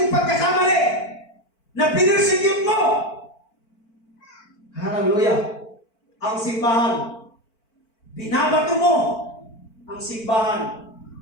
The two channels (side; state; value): right; late; 4.5 ms